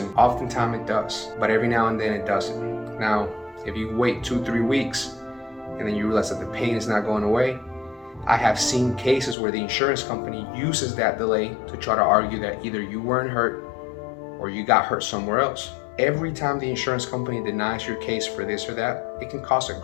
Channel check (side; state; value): right; drops out; at 9.3 s